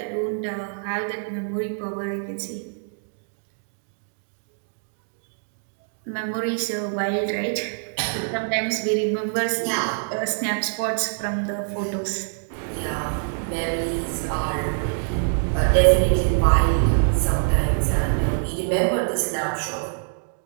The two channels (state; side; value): silent; left; digital silence